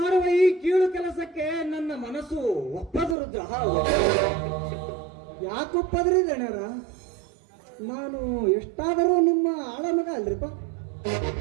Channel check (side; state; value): left; drops out; at 3.2 s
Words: ಈ ಕೀಳು ಕೆಲಸಕ್ಕೆ ನನ್ನ ಮನಸ್ಸು ಒಪ್ಪದು ರುದ್ರ. ಯಾಕೆ ಒಪ್ಪದ್ರಿ ಗಣ್ಯರ? ನಾನು ಎಷ್ಟಾದರೂ ನಿಮ್ಮ ಆಳ ಮಗ ಅಲ್ರಿಪ್ಪ.